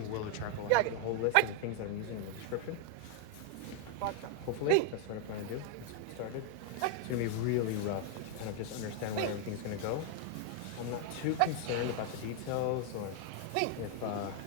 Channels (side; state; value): both; different; correlation 0.00